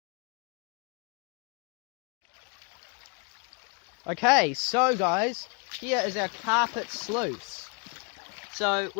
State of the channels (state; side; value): quieter; right; 34.3 dB